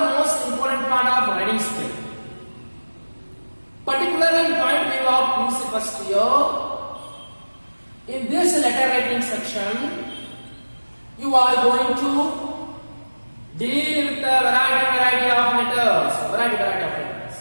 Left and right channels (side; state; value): both; inverted; correlation -1.00